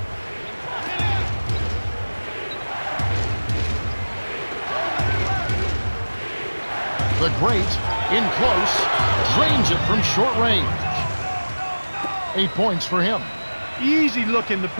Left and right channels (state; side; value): inverted; both; correlation -1.00